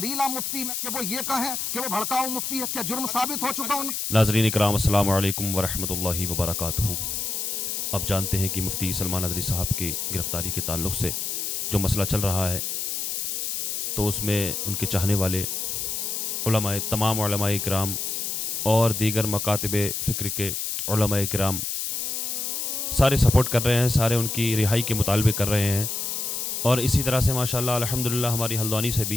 मुफ्ती में कि वो ये कहें कि वो भड़काऊ मुफ्ती है, क्या जुर्म साबित हो चुका उनका? नाज़रीन इकराम, अस्सलाम वालेकुम वरहमतुल्लाहि वबरकातुहू। अब जानते हैं कि मुफ्ती सलमान नदवी साहब की गिरफ़्तारी के ताल्लुक़ से जो मसला चल रहा है, तो उसमें उनके चाहने वाले उलमाए, तमाम उलमाए इकराम और दीगर मकातिब फ़िक्र के उलमाए इकराम सारे सपोर्ट कर रहे हैं, सारे उनकी रिहाई के मुतालबे कर रहे हैं। और इसी तरह से माशाअल्लाह अल्हम्दुलिल्लाह हमारी हल्द्वानी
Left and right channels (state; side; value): noise; left; hiss, 2 dB below the sound